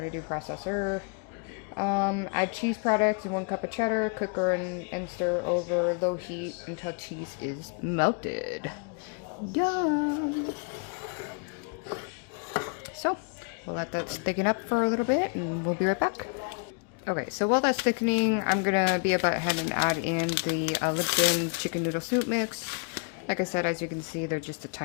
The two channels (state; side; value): quieter; right; 38.4 dB